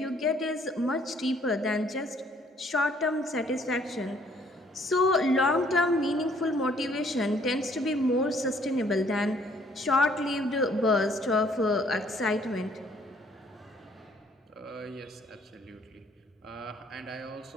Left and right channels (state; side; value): normal; both; correlation 0.62